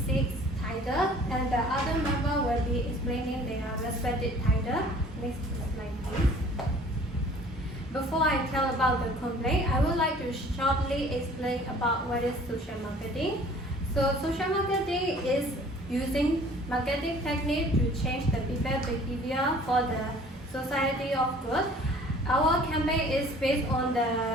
6 titles, and the other member will be explaining their respective title. Next slide, please. Before I tell about the complaint, I would like to shortly explain about what is social marketing. So social marketing is using marketing technique to change the people's behavior for the society of good. Our campaign is based on the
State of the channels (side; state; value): both; normal; correlation 0.51